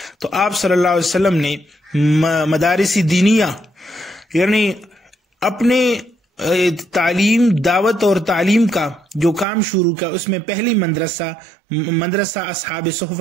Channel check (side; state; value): left; drops out; at 9.5 s